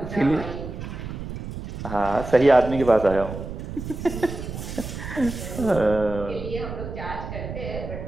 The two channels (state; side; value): noise; right; rumble, 8 dB below the sound